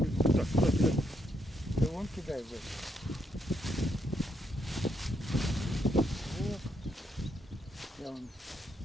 Так, да вон кидай в это. Вот. Я вон.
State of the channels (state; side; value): normal; both; correlation 0.77